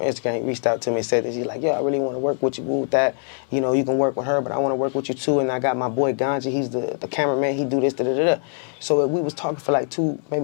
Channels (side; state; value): right; silent; 64 dB below the other